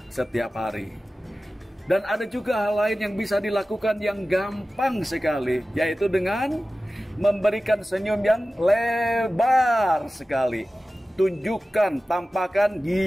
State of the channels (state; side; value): normal; both; correlation 0.95